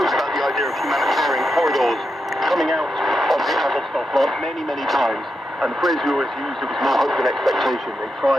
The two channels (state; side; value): normal; both; correlation 0.86